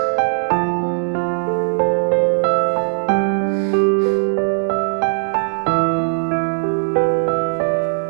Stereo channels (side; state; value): left; silent; digital silence